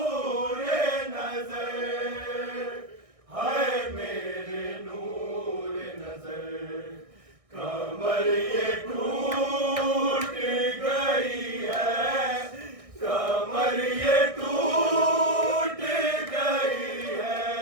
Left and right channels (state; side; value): late; left; 1.6 ms